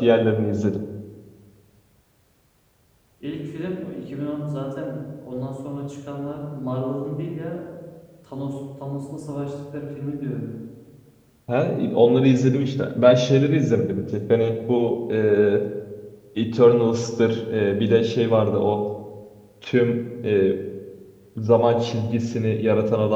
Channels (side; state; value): both; identical; correlation 1.00